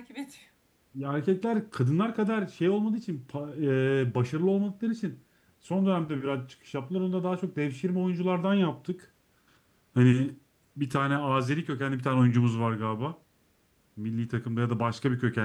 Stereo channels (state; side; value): identical; both; correlation 1.00